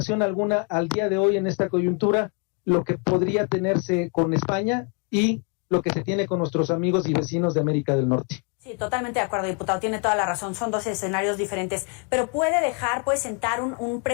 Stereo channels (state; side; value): quieter; right; 34.9 dB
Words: alguna al día de hoy en esta coyuntura lo que podría tenerse con España y lo que se tiene con nuestros amigos y vecinos de América del Norte. Sí, totalmente de acuerdo, diputado, tiene toda la razón, son dos escenarios diferentes, pero puede sentar un